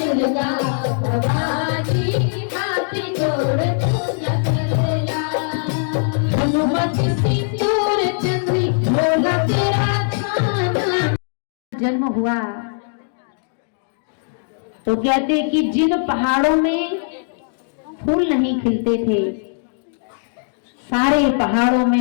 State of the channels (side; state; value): right; silent; digital silence